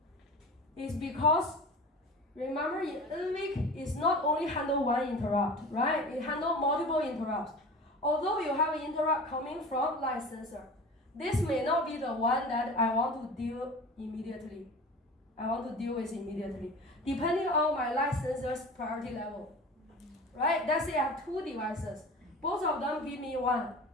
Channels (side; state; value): both; normal; correlation 0.36